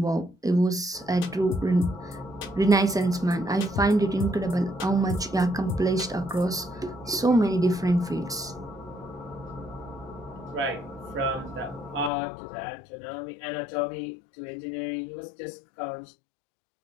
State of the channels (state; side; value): drops out; right; at 12.1 s